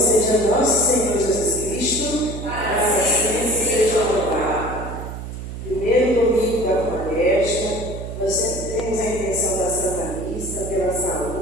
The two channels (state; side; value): noise; right; hum, 9 dB below the sound